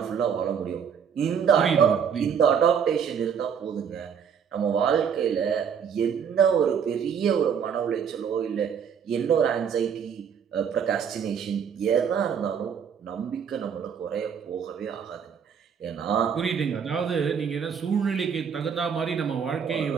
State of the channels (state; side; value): quieter; left; 7.3 dB